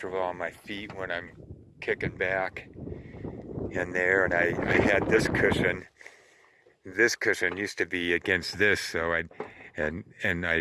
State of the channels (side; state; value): both; identical; correlation 1.00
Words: on my feet when I'm kicking back in there. And I had this cushion. This cushion used to be against this, so I'd